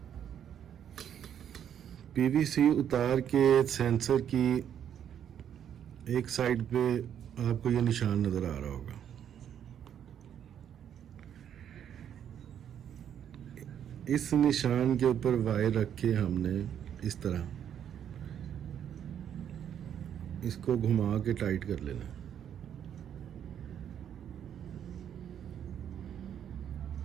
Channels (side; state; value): left; quieter; 9.3 dB